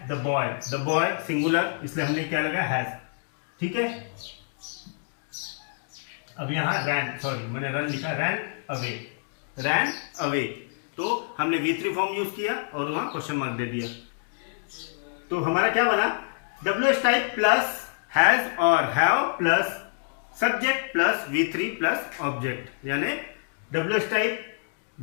the boy singular, इसलिए हमने क्या लगा हैज, ठीक है। अब यहाँ मैंने रन लिखा, रैन अवे, तो हमने V3 फॉर्म यूज किया और वहां क्वेश्चन मार्क दे दिया। तो हमारा क्या बना, WH टाइप प्लस हैज और have plus subject plus V3 plus object, यानी WH टाइप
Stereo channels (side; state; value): right; silent; digital silence